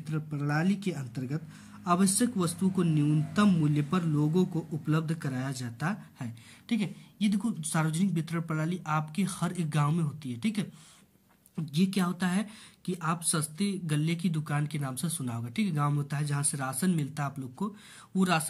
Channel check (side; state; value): both; identical; correlation 1.00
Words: प्रणाली के अंतर्गत आवश्यक वस्तु को न्यूनतम मूल्य पर लोगों को उपलब्ध कराया जाता है। ठीक है, ये देखो सार्वजनिक वितरण प्रणाली आपके हर एक गांव में होती है। ठीक है, ये क्या होता है कि आप सस्ते गल्ले की दुकान के नाम से सुना होगा। ठीक है, गांव में होता है जहां से राशन मिलता है आप लोग को, वो